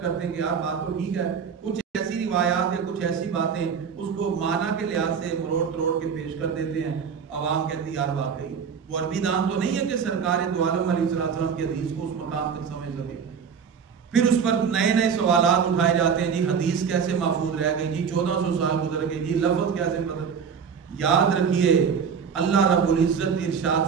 کرتے ہیں کہ یار بات تو ٹھیک ہے، کچھ ایسی روایات یا کچھ ایسی باتیں اس کو معنی کے لحاظ سے مروڑ تروڑ کے پیش کر دیتے ہیں، عوام کہتی یار واقعی وہ عربی دان تو نہیں ہے کہ سرکار دو عالم علیہ السلام کی حدیث کو اس مقام تک سمجھ سکے۔ پھر اس پر نئے نئے سوالات اٹھائے جاتے ہیں، جی حدیث کیسے محفوظ رہ گئی، جی 1400 سال گزر گئے، جی لفظ کیسے بدل۔ یاد رکھیے اللہ رب العزت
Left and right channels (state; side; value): quieter; left; 6.6 dB